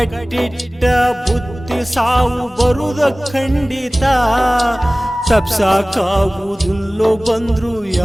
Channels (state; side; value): normal; both; correlation 0.98